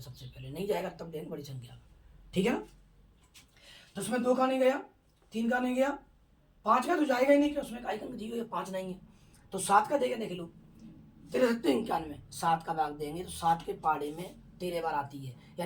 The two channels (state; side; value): identical; both; correlation 1.00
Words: सबसे पहले नहीं जाएगा तब देंगे बड़ी संख्या, ठीक है ना। तो उसमें 2 का नहीं गया, 3 का नहीं गया, 5 का तो जाएगा ही नहीं, कि उसमें इकाई का अंक 0 या 5 नहीं है। तो 7 का देगा, देख लो, 93 7 का भाग देंगे तो 7 के पाड़े में 13 बार आती है,